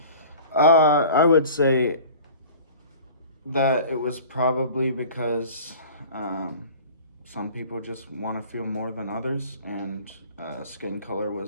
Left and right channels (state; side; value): inverted; both; correlation -0.43